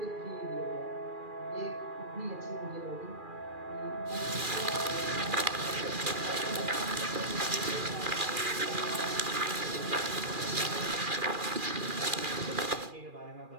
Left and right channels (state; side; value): late; left; 2.4 ms